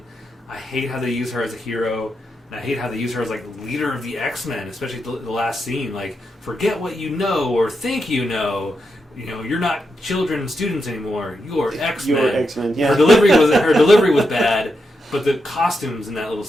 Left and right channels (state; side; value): normal; both; correlation 0.85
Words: I hate how they use her as a hero, and I hate how they use her as, leader of the X-Men, especially the last scene. Forget what you know or think you know. You're not children and students anymore. You're X-Men. You're X-Men, yeah. Her delivery was bad, but the costumes in that little